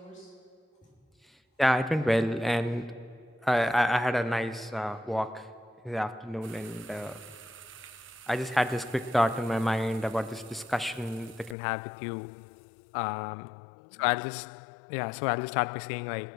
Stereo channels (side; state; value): right; drops out; at 11.6 s